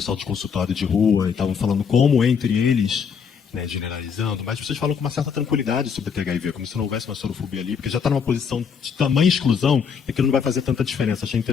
de consultório de rua e estavam falando como entre eles, né, generalizando, mas vocês falam com uma certa tranquilidade sobre a THIV, como se não houvesse uma sorofobia ali, porque já está numa posição de tamanha exclusão e que não vai fazer tanta diferença. Achei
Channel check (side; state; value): right; quieter; 6.5 dB